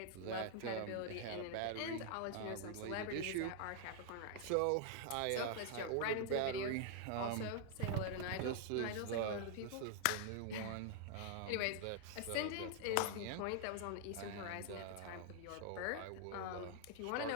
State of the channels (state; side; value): different; both; correlation 0.00